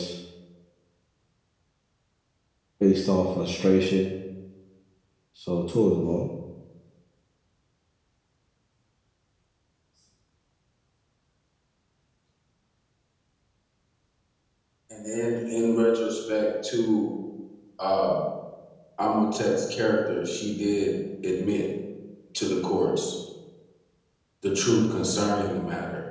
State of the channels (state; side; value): identical; both; correlation 1.00